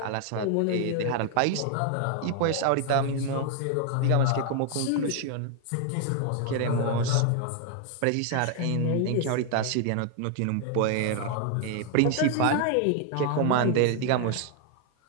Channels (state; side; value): different; both; correlation 0.00